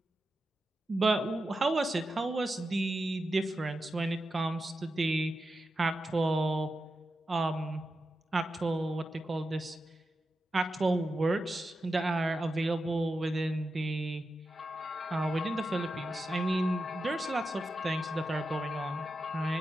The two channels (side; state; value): both; normal; correlation 0.90